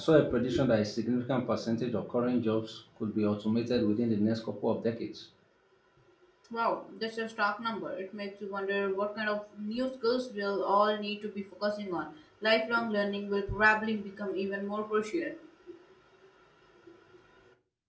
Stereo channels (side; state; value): both; identical; correlation 1.00